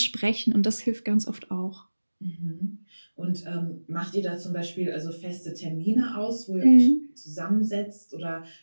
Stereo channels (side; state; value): both; inverted; correlation -1.00